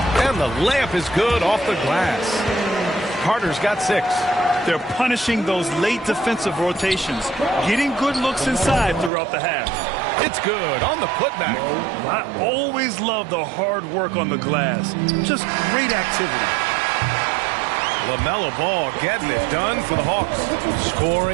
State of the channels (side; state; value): left; drops out; at 9.1 s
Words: And the layup is good off the glass. Carter's got 6. They're punishing those late defensive rotations, getting good looks inside throughout the half. It's good on the putback. I always love the hard work on the glass. Just great activity. LaMelo Ball getting it done for the Hawks.